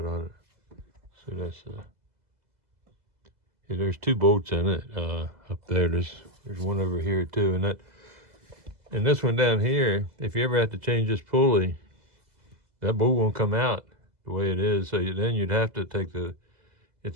on it. So that's yeah, there's 2 bolts in it up there. There's one over here too, and this one down here. If you ever have to change this pulley, that bolt won't come out the way it is. So then you'd have to take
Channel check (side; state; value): left; late; 2.0 ms